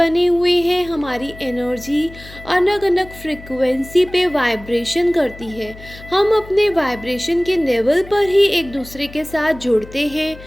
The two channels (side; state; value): left; noise; hum, 18 dB below the sound